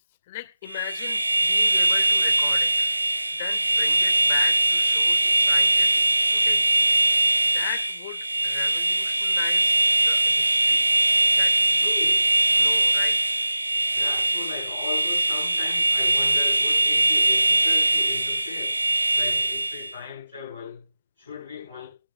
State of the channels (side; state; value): both; inverted; correlation -0.93